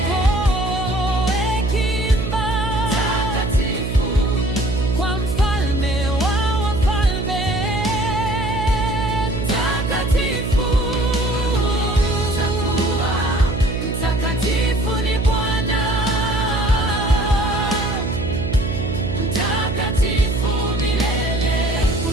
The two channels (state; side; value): noise; right; hum, 4 dB below the sound